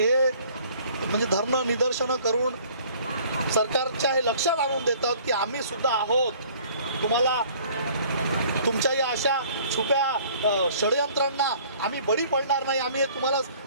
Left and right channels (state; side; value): inverted; both; correlation -0.54